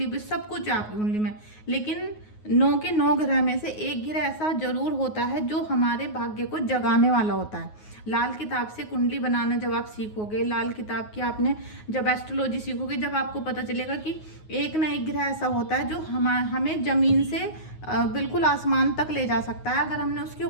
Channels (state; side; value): late; right; 9.5 ms